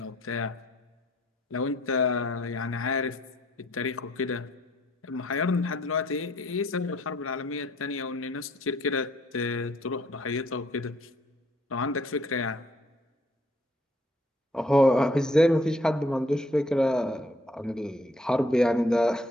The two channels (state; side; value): normal; both; correlation 0.64